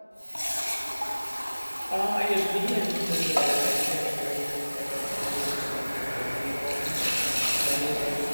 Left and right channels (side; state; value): both; inverted; correlation -1.00